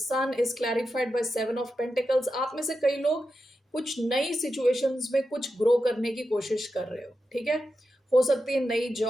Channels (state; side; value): normal; both; correlation 0.89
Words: is clarified by seven of pentacles. आप में से कई लोग कुछ नई सिचुएशंस में कुछ ग्रो करने की कोशिश कर रहे हो. ठीक है, हो सकती है नई